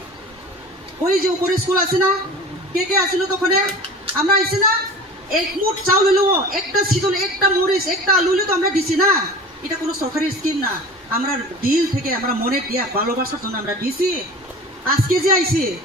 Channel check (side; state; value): both; normal; correlation 0.38